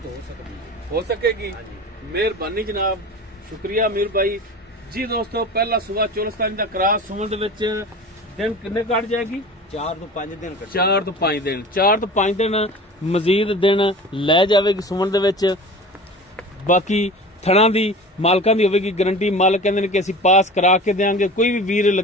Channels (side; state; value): both; normal; correlation 0.37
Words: हो सकेगी। मेहरबानी जनाब, शुक्रिया मीर भाई जी। दोस्तों पहला सुबह चोलस्तानी दा क्रॉस सुमन दे विच दिन किन्ने कट जाएगी? 4 तो 5 दिन। 4 तो 5 दिन 4 तो 5 दिन मजीद दिन लै जावेगी सुमन दे विच। बाकी थणा दी मालकां दी होवेगी गारंटी। मालक कहंदे ने कि असीं पास करा के देंगे। कोई भी वीर